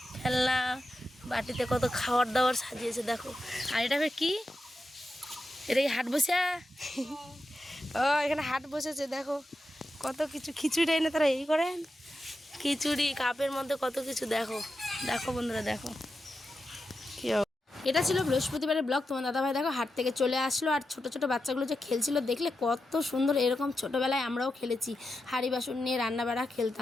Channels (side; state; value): both; normal; correlation 0.89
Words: খেলনা, বাটিতে কত খাবার দাবার সাজিয়েছে দেখো। আর এটা কি, এটা কি হাট বসে? ও এখানে হাট বসেছে, দেখো কত কিছু। খিচুড়ি এনে তারা এই করেন, খিচুড়ি কাপের মধ্যে কত কিছু। দেখো দেখো বন্ধুরা, দেখো কি। এটা ছিল বৃহস্পতিবারের ব্লগ। তোমার দাদাভাই দেখো হাট থেকে চলে আসলো, আর ছোট ছোট বাচ্চাগুলো যে খেলছিল দেখলে কত সুন্দর। এরকম ছোটোবেলায় আমরাও খেলেছি, হাঁড়ি বাসন নিয়ে রান্নাবাড়া